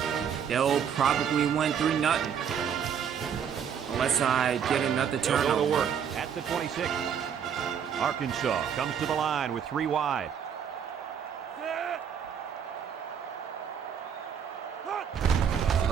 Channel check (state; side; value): quieter; left; 7.9 dB